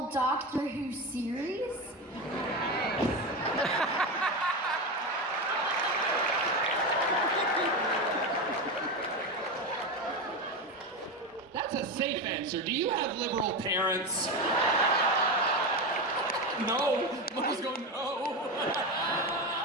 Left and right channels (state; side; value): normal; both; correlation 0.18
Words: Doctor Who series. That's a safe answer. Do you have liberal parents? No. Mom's going, no.